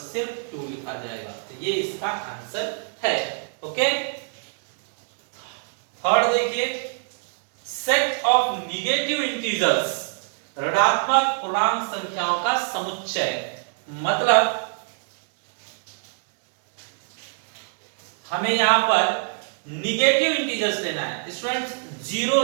सिर्फ 2 लिखा जाएगा। तो ये इसका आंसर है। ओके, थर्ड देखिए, सेट ऑफ निगेटिव इंटीजर्स, ऋणात्मक पूर्णांक संख्याओं का समुच्चय। मतलब हमें यहां पर निगेटिव इंटीजर्स लेना है स्टूडेंट्स। जीरो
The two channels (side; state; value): left; silent; 62 dB below the other